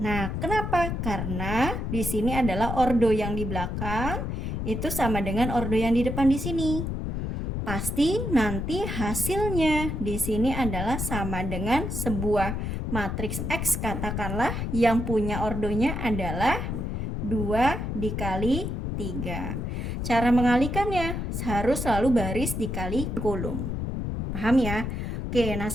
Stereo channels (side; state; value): left; noise; rumble, 3 dB below the sound